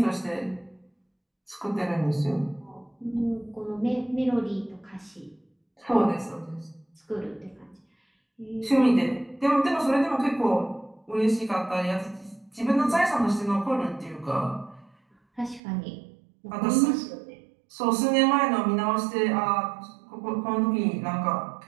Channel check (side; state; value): left; drops out; at 15.6 s